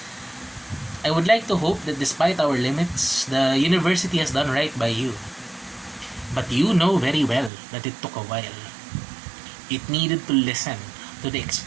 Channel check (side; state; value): left; drops out; at 7.5 s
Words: I would like to hope that despite our limits, the university has done right by you. But you know very well that it took a while. It needed to listen to the